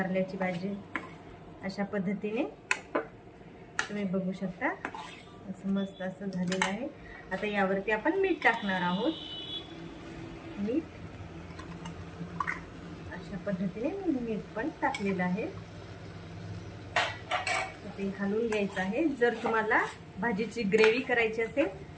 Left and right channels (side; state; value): both; identical; correlation 1.00